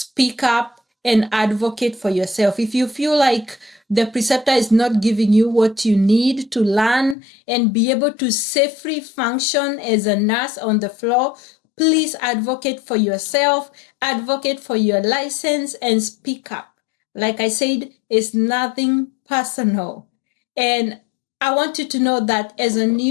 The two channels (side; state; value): right; drops out; at 7.2 s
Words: up and advocate for yourself. If you feel like the preceptor is not giving you what you need to learn and be able to safely function as a nurse on the floor, please advocate for yourself, advocate for your license, and speak up. Like I said, it's nothing personal. And I want you to know that as a